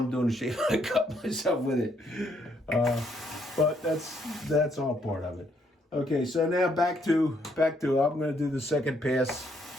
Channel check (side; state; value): both; normal; correlation 0.71